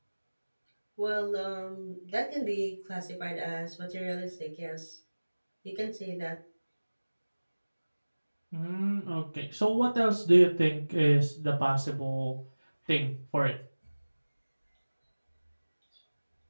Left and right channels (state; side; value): inverted; both; correlation -1.00